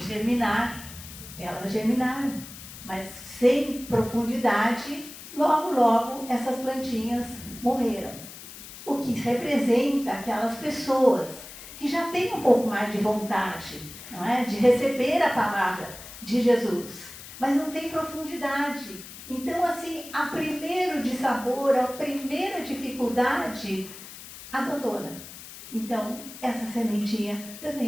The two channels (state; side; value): noise; left; hiss, 14 dB below the sound